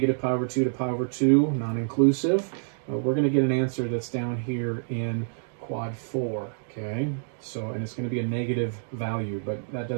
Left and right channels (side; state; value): left; silent; digital silence